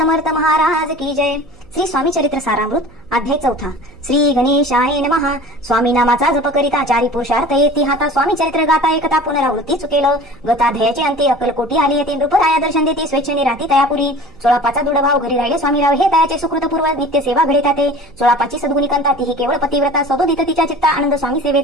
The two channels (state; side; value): noise; right; hum, 27 dB below the sound